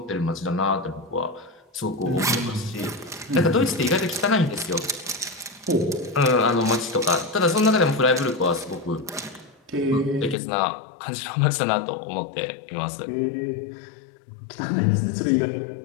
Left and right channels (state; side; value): drops out; right; at 10.4 s